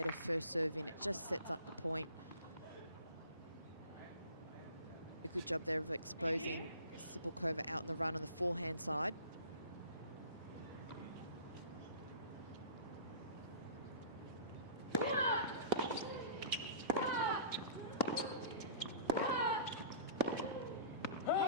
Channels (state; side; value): inverted; both; correlation -0.43